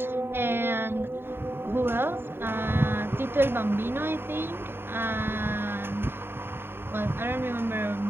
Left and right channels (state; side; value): late; left; 0.11 ms